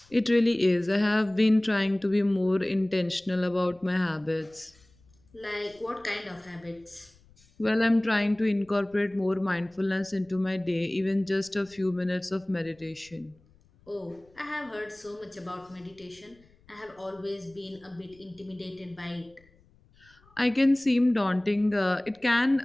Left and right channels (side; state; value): left; noise; rumble, 30 dB below the sound